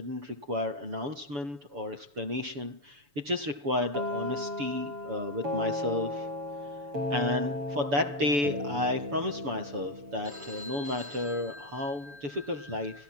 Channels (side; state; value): left; late; 7.0 ms